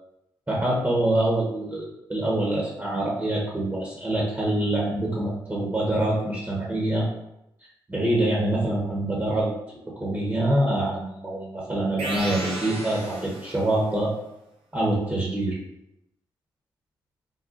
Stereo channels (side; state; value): both; normal; correlation 0.79